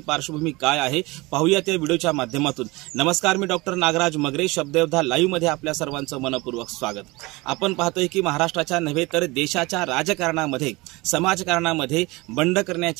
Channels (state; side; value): quieter; left; 23.1 dB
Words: पार्श्वभूमी काय आहे पाहूया त्या व्हिडिओच्या माध्यमातून। नमस्कार, मी डॉक्टर नागराज मगरे, शब्दयोद्धा लाईव्ह मध्ये आपल्या सर्वांचं मनपूर्वक स्वागत। आपण पाहतोय की महाराष्ट्राच्या नव्हे तर देशाच्या राजकारणामध्ये, समाजकारणामध्ये बंड